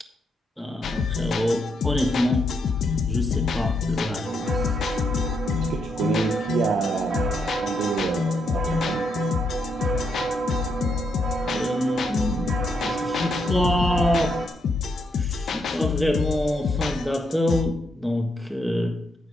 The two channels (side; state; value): both; normal; correlation 0.78